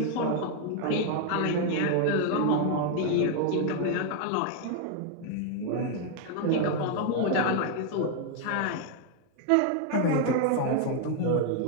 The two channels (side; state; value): both; different; correlation 0.00